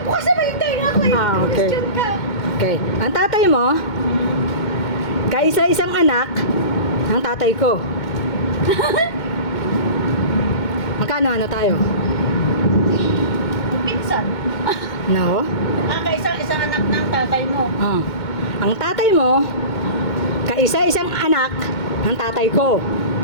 kasi baita nga ako. Okay. Question ka. Okay. Ang tatay mo, kaisa-isang anak ng tatay ko. Magkano ano tayo? Pinsan. No? Kaisang anak ng tatay mo. Ah. Ang tatay mo, kaisa-isang anak ng tatay ko.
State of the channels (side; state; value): right; late; 2.2 ms